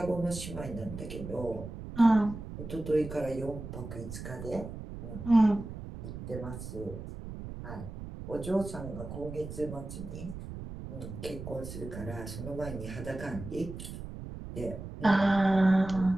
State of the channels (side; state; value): right; noise; rumble, 10 dB below the sound